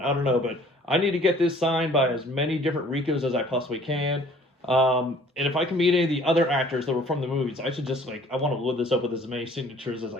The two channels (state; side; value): normal; both; correlation 0.54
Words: I don't know, but I need to get this signed by as many different Ricos as I possibly can. And if I can meet any of the other actors that were from the movies, I should just I want to load this up with as many signatures as